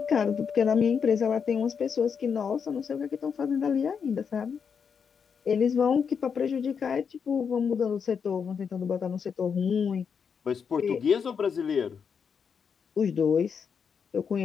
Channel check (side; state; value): right; quieter; 6.6 dB